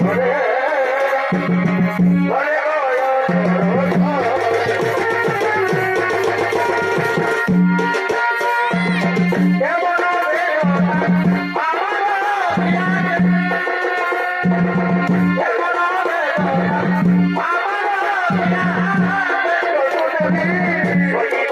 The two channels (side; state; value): both; identical; correlation 1.00